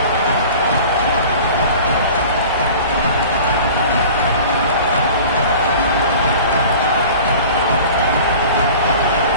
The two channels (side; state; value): both; inverted; correlation -0.41